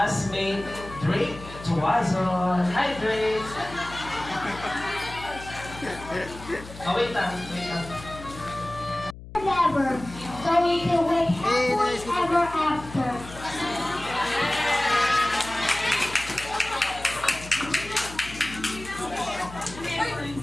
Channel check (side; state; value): left; noise; hum, 15 dB below the sound